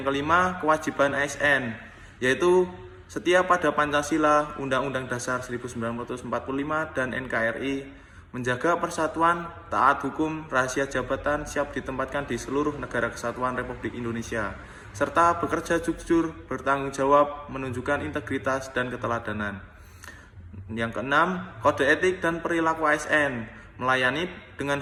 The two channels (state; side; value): identical; both; correlation 1.00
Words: kelima, kewajiban ASN, yaitu setia pada Pancasila, Undang-Undang Dasar 1945 dan NKRI, menjaga persatuan, taat hukum, rahasia jabatan siap ditempatkan di seluruh negara kesatuan Republik Indonesia, serta bekerja jujur, bertanggung jawab, menunjukkan integritas dan keteladanan. Yang keenam, kode etik dan perilaku ASN, melayani dengan